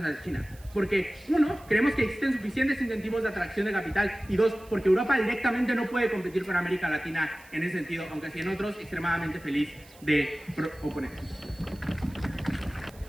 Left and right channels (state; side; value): noise; right; hiss, 24 dB below the sound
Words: a China. Porque uno, creemos que existen suficientes incentivos de atracción de capital y dos, porque Europa directamente no puede competir con América Latina en ese sentido, aunque sí en otros extremadamente feliz de oponerse.